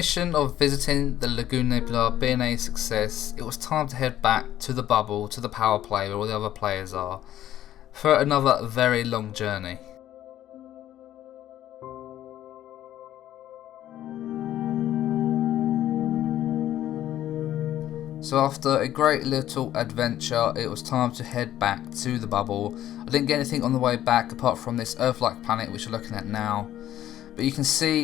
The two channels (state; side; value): quieter; right; 12.5 dB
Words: of visiting the Lagoon Nebula being a success, it was time to head back to the bubble, to the power play where all the other players are, for another very long journey. So after a great little adventure, it was time to head back to the bubble. I didn't get anything on the way back apart from this Earth-like planet which you're looking at now. But you can